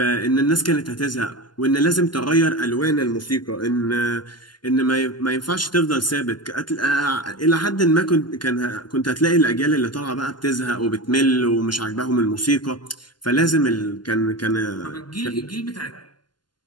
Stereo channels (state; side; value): late; right; 0.71 ms